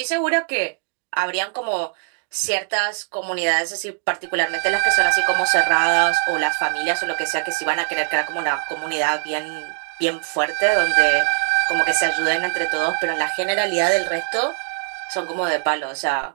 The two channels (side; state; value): left; silent; digital silence